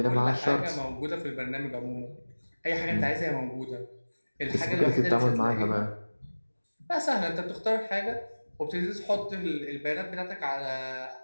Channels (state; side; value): inverted; both; correlation -1.00